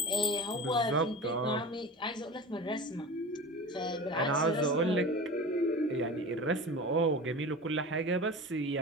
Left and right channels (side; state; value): both; normal; correlation 0.33